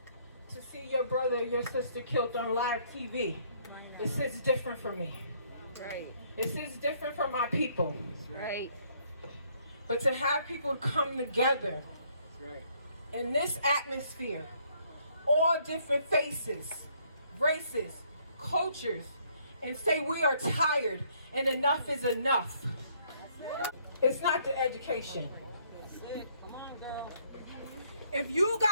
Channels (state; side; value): inverted; both; correlation -0.66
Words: to see your brother or your sister killed on live TV, it sits different for me. Right. It sits different for my people. Right. But to have people come together Right. in this atmosphere, all different faces, races, cultures, and say we are tired and enough is enough. It's not the education. If you